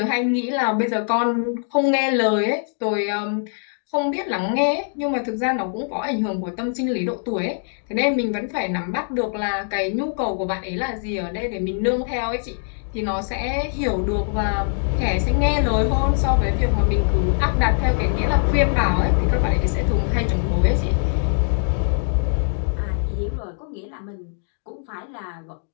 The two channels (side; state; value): right; silent; 64 dB below the other